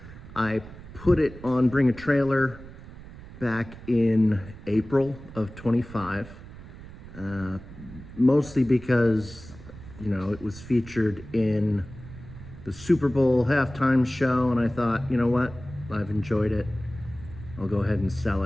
I put it on Bring a Trailer back in April of 25, mostly because, it was featured in the Super Bowl halftime show, and I thought, you know what, I've enjoyed it. I'll go ahead and sell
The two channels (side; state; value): right; noise; rumble, 16 dB below the sound